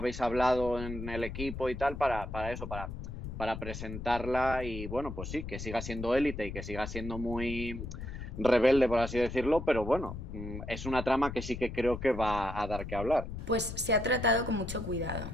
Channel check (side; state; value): left; noise; rumble, 8 dB below the sound